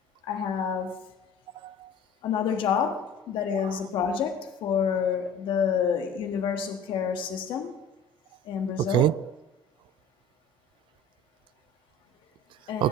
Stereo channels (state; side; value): normal; both; correlation 0.43